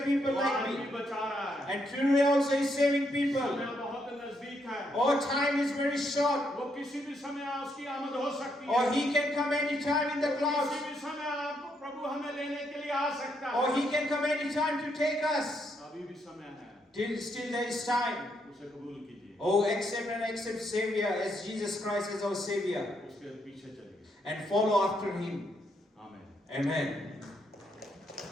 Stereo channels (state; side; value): normal; both; correlation 0.76